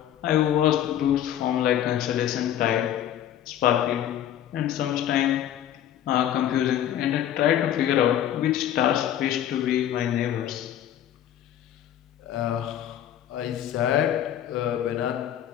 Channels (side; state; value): right; quieter; 11.0 dB